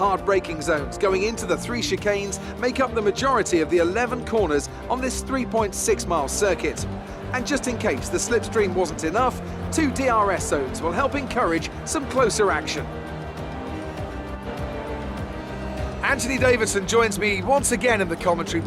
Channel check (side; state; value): both; identical; correlation 1.00